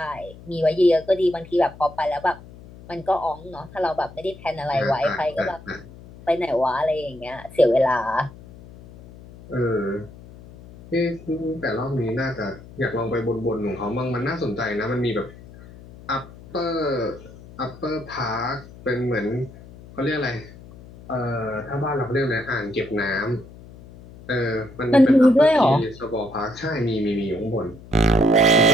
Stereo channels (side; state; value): left; noise; hum, 19 dB below the sound